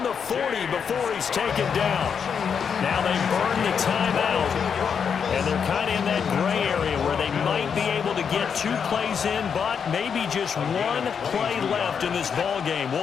the 40 before he's taken down. Now they burn the timeout. And they're kind of in that gray area where they might be able to get 2 plays in, but maybe just 1 play left in this ball game.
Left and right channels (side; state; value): right; quieter; 6.9 dB